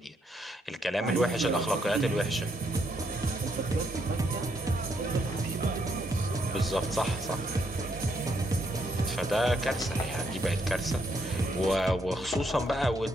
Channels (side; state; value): both; normal; correlation 0.74